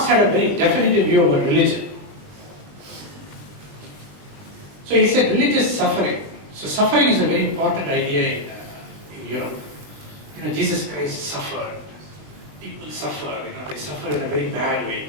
had a very definitive view about religion. So he said religious suffering. So suffering is a very important idea in Europe. Jesus Christ suffered. People suffer, they suffer in a very bad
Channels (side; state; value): left; late; 20 ms